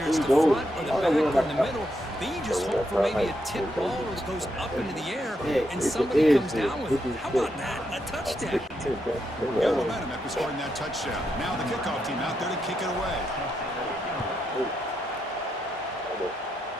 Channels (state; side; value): normal; both; correlation 0.81